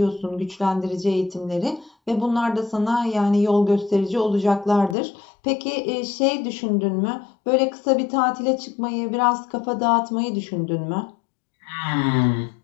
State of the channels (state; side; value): drops out; right; at 5.0 s